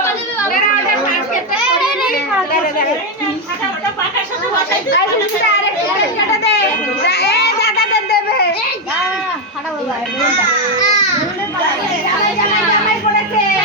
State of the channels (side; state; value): both; normal; correlation 0.05